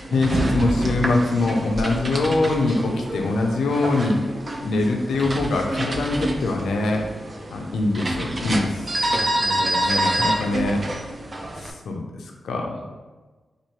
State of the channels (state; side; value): normal; both; correlation 0.88